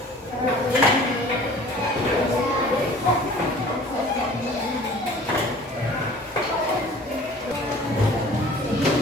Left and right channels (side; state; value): both; normal; correlation 0.47